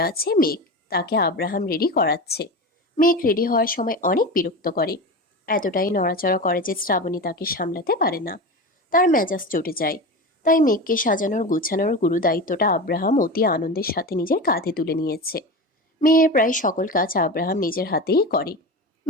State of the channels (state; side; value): normal; both; correlation 0.26